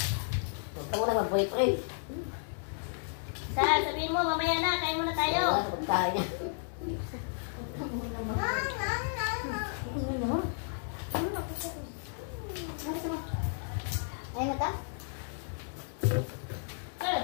tayo niya. Ayaw mo ta?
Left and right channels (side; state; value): right; silent; digital silence